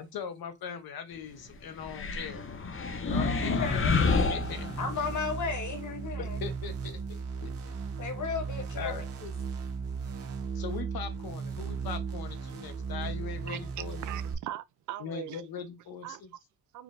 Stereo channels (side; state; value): both; normal; correlation 0.39